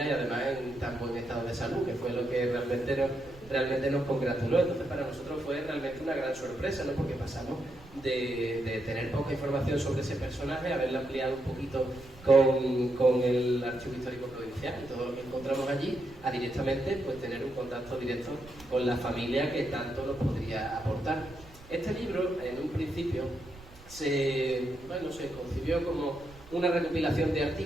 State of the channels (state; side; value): noise; right; rumble, 21 dB below the sound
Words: y además en tan buen estado de salud, que fue lo que realmente nos congratuló. Entonces, para nosotros fue realmente una gran sorpresa, ¿no? Porque pasamos de tener poca información sobre ese personaje a haberla ampliado un poquito con el Archivo Histórico Provincial y todo lo que encontramos allí, a directamente pues tener un contacto directo con la familia que tanto nos podría aportar. Este libro, en un principio, se concibió como una recopilación de